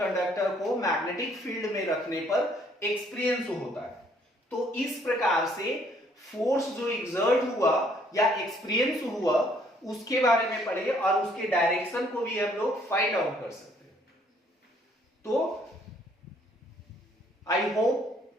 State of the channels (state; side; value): normal; both; correlation 0.64